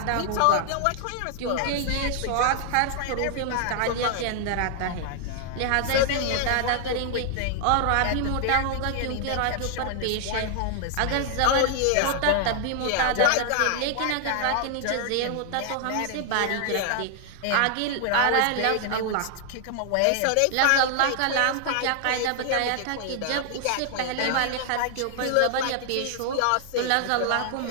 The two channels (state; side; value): different; both; correlation 0.00